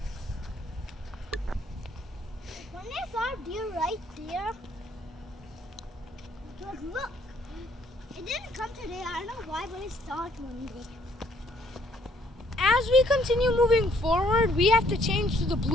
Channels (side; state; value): both; normal; correlation 0.65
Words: When I saw a deer right there, because look, it didn't come today. I don't know why, but I saw it one day. As we continue moving forward, we have to change to the